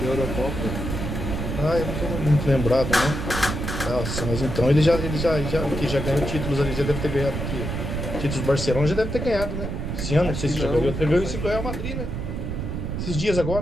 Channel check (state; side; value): noise; right; rumble, 4 dB below the sound